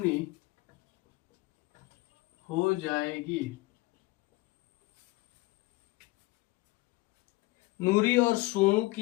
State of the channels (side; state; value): right; quieter; 21.4 dB